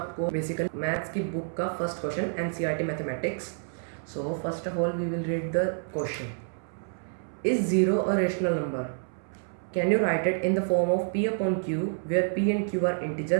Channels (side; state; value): left; silent; 59 dB below the other